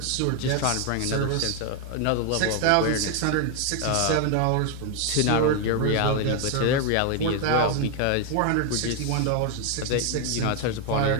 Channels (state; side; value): different; both; correlation 0.01